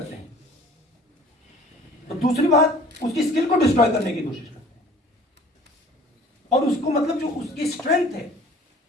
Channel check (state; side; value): normal; both; correlation 0.50